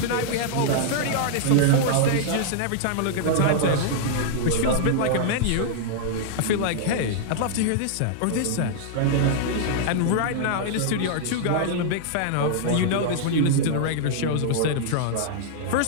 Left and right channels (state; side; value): different; both; correlation -0.01